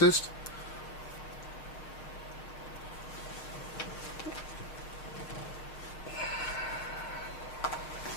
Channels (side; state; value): right; late; 6.8 ms